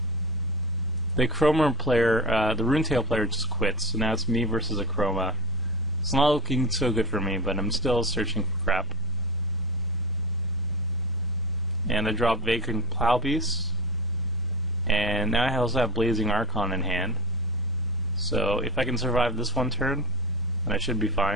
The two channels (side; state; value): both; normal; correlation 0.23